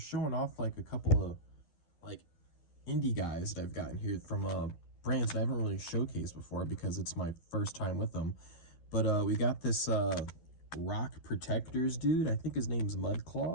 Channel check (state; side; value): late; right; 11 ms